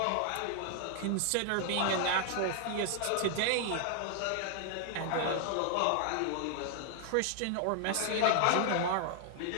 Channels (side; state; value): both; different; correlation 0.00